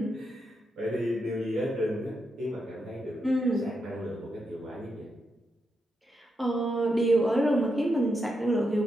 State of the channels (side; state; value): both; normal; correlation 0.84